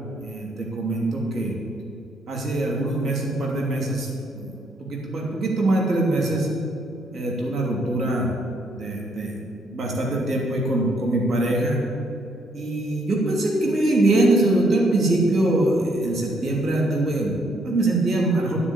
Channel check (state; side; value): normal; both; correlation 0.70